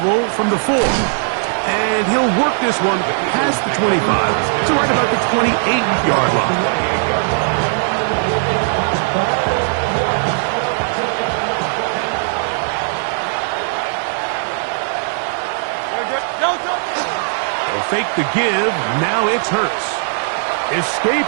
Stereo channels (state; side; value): silent; left; 60 dB below the other